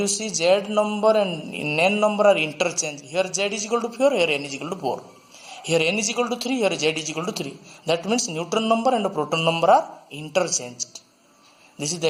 see Z number and N number are interchanged. Here Z is equal to 4, here N is equal to 4. Here N is equal to 3, here Z is equal to 3. That means neutron number and proton number are interchanged. This is the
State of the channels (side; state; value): both; identical; correlation 1.00